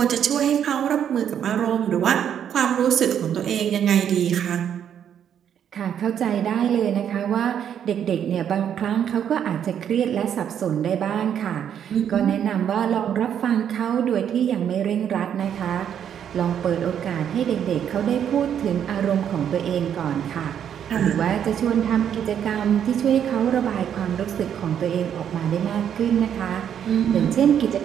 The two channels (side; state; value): left; quieter; 9.0 dB